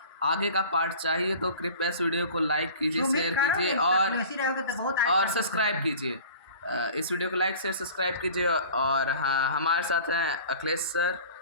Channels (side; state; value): both; inverted; correlation -0.42